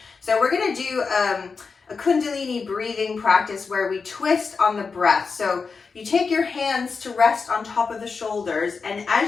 So we're going to do a Kundalini breathing practice where we twist on the breath. So you take your hands to rest on top of the shoulders, and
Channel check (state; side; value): quieter; right; 4.9 dB